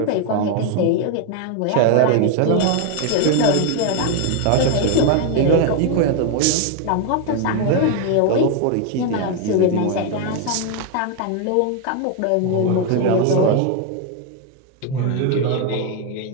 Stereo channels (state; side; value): different; both; correlation 0.01